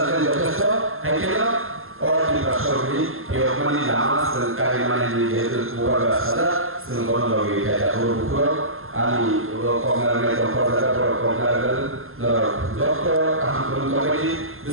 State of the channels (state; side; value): late; left; 0.61 ms